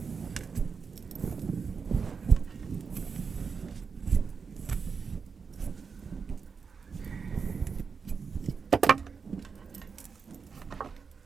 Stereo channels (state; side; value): quieter; left; 5.5 dB